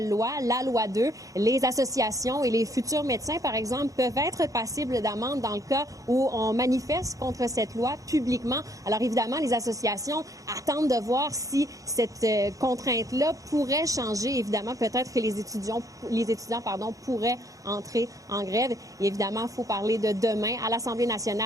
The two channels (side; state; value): left; late; 0.16 ms